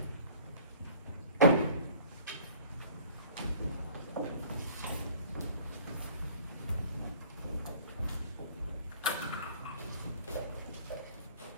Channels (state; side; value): inverted; both; correlation -0.50